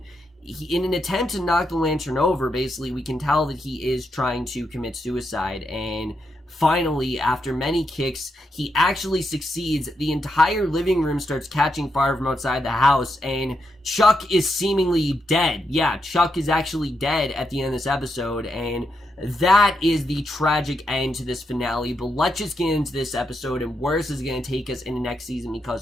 in an attempt to knock the lantern over, basically, we can tell that he is trying to commit suicide, and finally, after many kicks, he actually succeeds. The entire living room starts catching fire from outside the house, and Chuck is seemingly dead. Yeah, Chuck is actually dead at the end of this episode, and that is the tragic end to this finale. But let's just get into this episode and where this is going to take us in the next season,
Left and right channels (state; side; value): normal; both; correlation 0.82